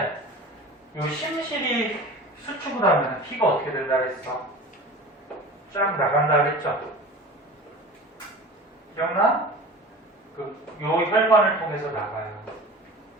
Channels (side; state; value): both; normal; correlation 0.37